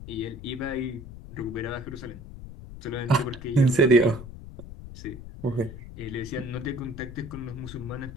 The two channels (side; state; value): left; noise; rumble, 13 dB below the sound